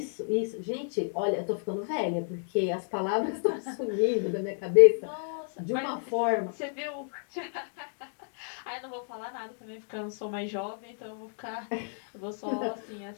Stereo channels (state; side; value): silent; right; digital silence